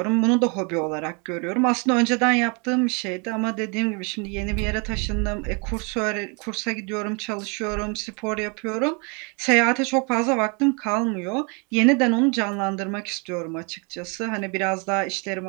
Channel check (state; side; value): quieter; left; 33.4 dB